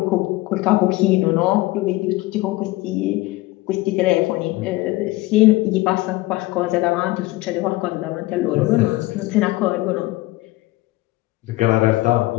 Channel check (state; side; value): quieter; right; 19.3 dB